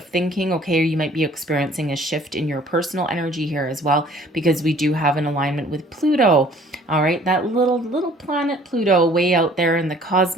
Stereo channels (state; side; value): normal; both; correlation 0.55